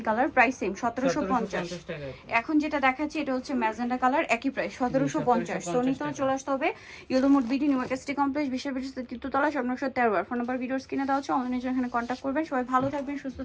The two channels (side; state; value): both; identical; correlation 1.00